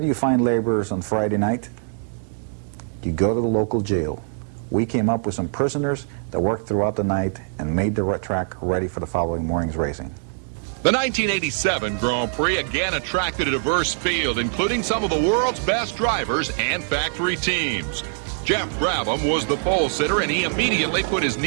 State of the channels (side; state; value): left; silent; 63 dB below the other